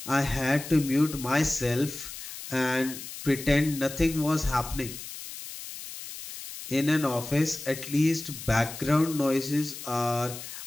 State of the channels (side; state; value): left; noise; hiss, 11 dB below the sound